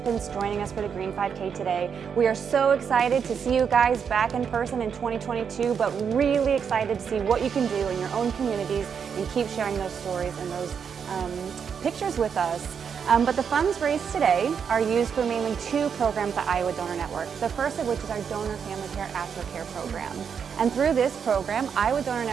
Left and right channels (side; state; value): left; quieter; 7.0 dB